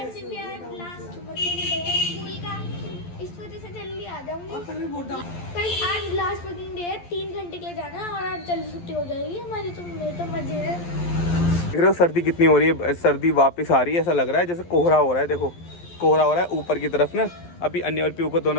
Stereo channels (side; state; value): right; late; 11 ms